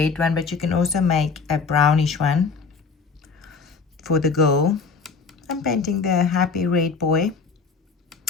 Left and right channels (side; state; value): right; quieter; 4.9 dB